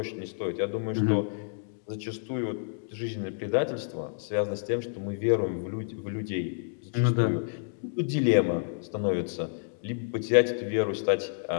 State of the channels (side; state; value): right; silent; digital silence